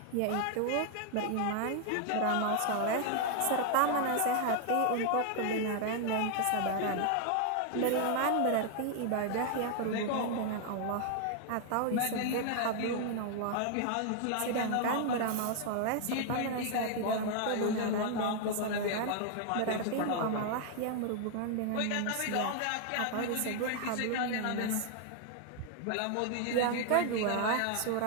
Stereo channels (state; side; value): different; both; correlation 0.00